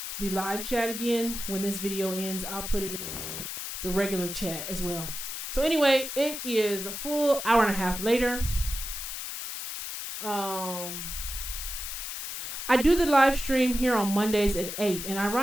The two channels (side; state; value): left; noise; hiss, 6 dB below the sound